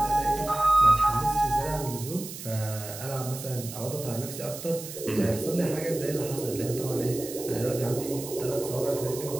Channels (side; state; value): right; noise; hiss, 11 dB below the sound